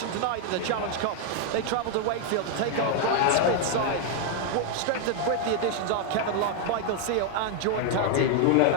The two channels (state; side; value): different; both; correlation 0.00